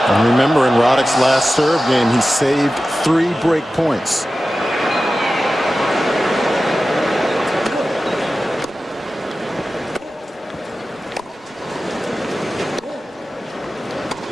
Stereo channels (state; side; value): normal; both; correlation 0.94